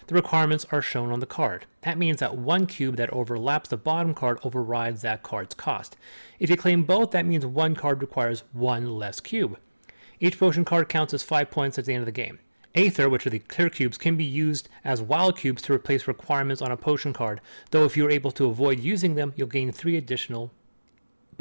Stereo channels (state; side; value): inverted; both; correlation -1.00